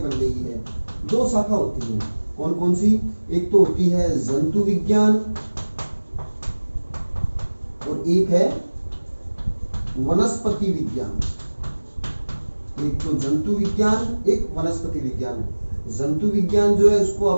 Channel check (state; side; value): inverted; both; correlation -1.00